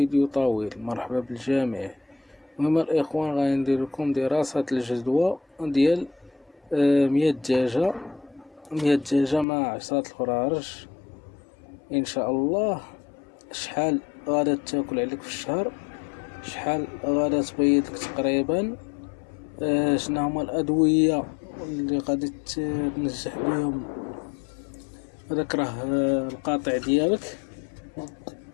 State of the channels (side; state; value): right; drops out; at 9.5 s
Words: طويل. مرحبا بالجميع. المهم الاخوان غادي ندير لكم دراسة الجدوى ديال 100 دجاجة 100 دجاجة مع 10 الفرارج ان شاء الله. شحال غادا تاكل عليك في الشهر، شحال غادا تبيض لك تقريبا، شنو هما الادوية اللي غادي تنجح بهم هذاك راه القاطع ديالك.